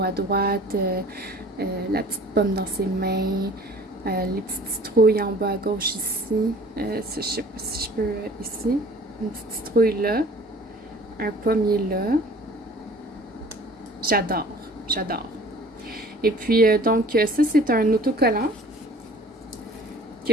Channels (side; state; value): both; normal; correlation 0.49